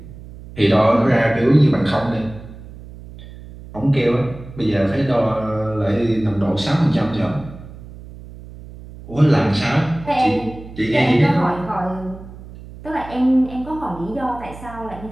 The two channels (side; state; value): right; noise; hum, 16 dB below the sound